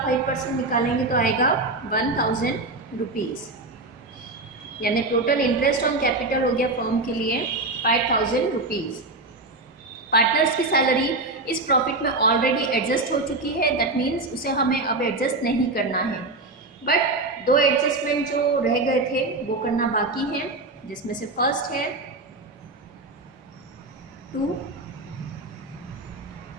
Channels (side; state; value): left; quieter; 3.1 dB